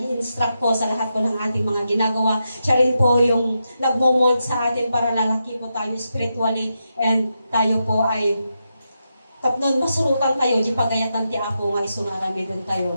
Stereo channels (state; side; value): inverted; both; correlation -0.86